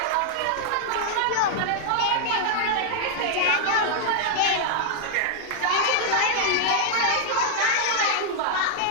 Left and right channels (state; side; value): different; both; correlation -0.01